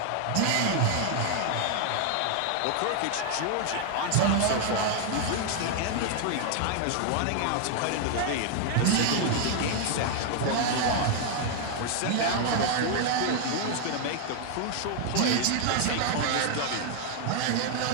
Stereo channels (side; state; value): both; different; correlation 0.00